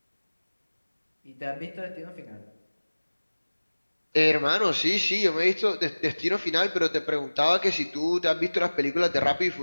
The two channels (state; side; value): inverted; both; correlation -1.00